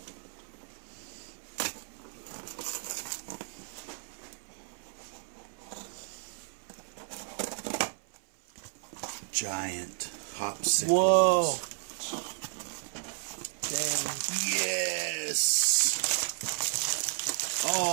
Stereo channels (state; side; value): silent; left; 56 dB below the other